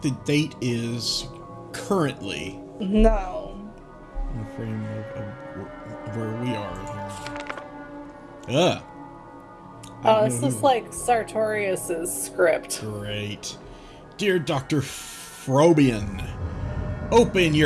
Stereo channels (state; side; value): identical; both; correlation 1.00